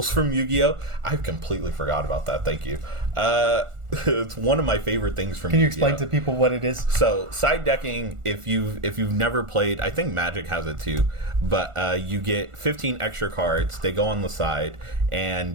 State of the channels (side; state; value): left; late; 1.4 ms